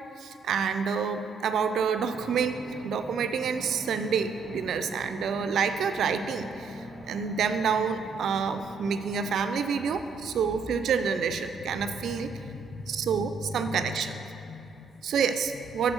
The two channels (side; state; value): left; quieter; 5.5 dB